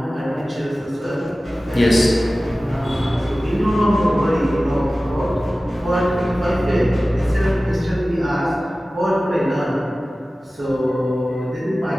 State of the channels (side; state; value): both; normal; correlation 0.96